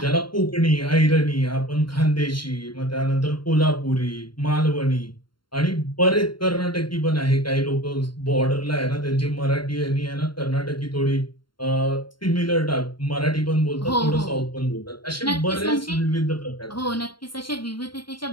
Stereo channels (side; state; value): right; late; 0.72 ms